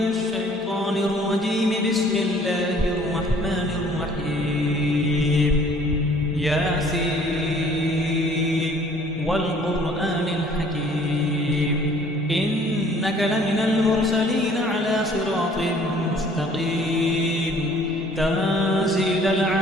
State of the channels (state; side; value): normal; both; correlation 0.55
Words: الشيطان الرجيم. بسم الله الرحمن الرحيم. ياسين والقرآن الحكيم إنك لمن المرسلين على صراط مستقيم تنزيل